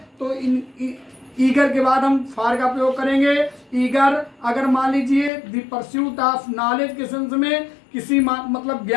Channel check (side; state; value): right; drops out; at 5.3 s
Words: तो ईगर के बाद हम फार का प्रयोग करेंगे। ईगर अगर मान लीजिए द परस्यूट ऑफ नॉलेज के सेंस में, किसी मतलब